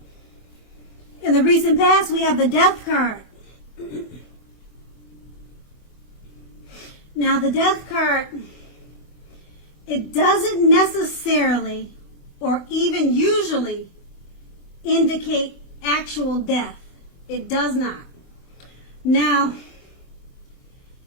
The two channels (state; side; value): late; right; 24 ms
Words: in the recent past we have the Death card. Now the Death card, it doesn't necessarily or even usually indicate actual death. It does not. Now,